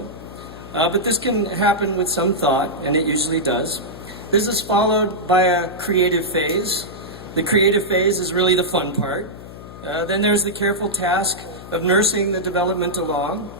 But this can happen with some thought, and it usually does. This is followed by a creative phase. The creative phase is really the fun part. Then there's the careful task of nursing the development along.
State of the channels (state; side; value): noise; left; hum, 15 dB below the sound